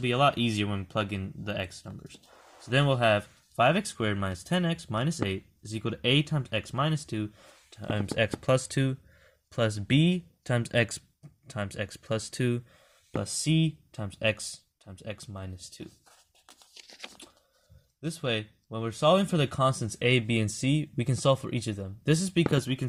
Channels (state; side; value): identical; both; correlation 1.00